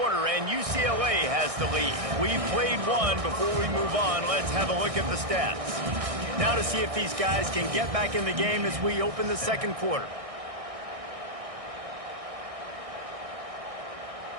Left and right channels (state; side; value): late; left; 1.6 ms